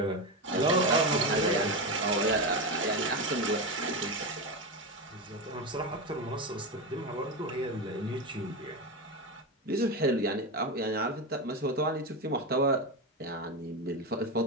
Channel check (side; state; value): both; normal; correlation 0.15